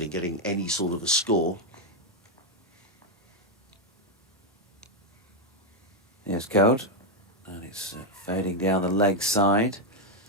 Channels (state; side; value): normal; both; correlation 0.03